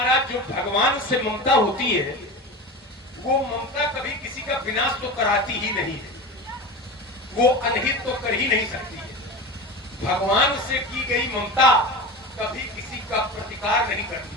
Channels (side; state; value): both; normal; correlation 0.28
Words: जो भगवान से ममता होती है वो ममता कभी किसी का विनाश तो कराती ही नहीं है, वो अनहित तो कर ही नहीं सकती है। भगवान से की गई ममता कभी किसी का प्रतिकार नहीं करती